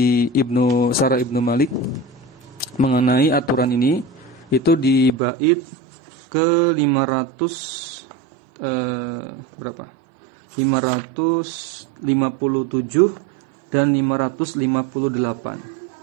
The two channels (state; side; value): drops out; left; at 5.2 s